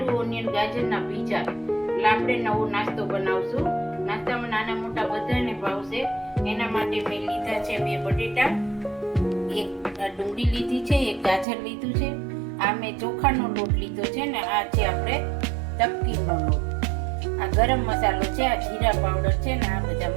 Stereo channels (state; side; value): drops out; left; at 11.5 s